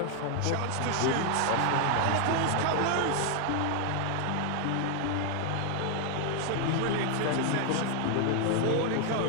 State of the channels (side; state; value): both; different; correlation 0.00